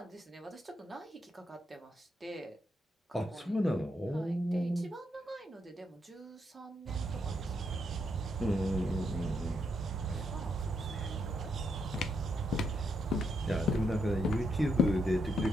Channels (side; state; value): both; normal; correlation 0.79